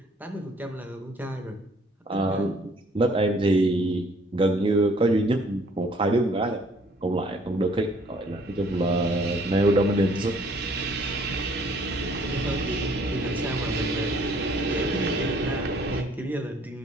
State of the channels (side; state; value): both; normal; correlation 0.60